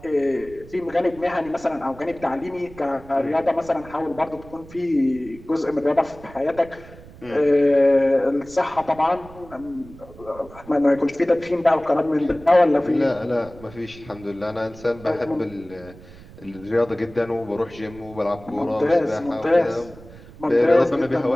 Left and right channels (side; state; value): right; noise; rumble, 20 dB below the sound